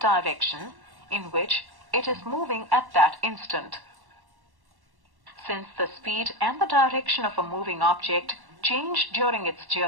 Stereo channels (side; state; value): left; late; 1.1 ms